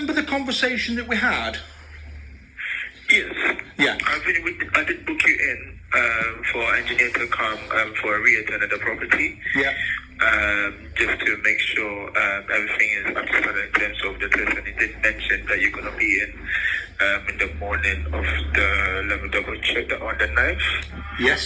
the conversation that we had? Yes. Yeah. I did book you in for engineer to come for a re-attend at the property. Yeah. Just to make sure everything is up to standard in terms of the test. And he did mention that you're going to be in the morning of the, let me double check that, on the 9th.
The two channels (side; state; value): both; identical; correlation 1.00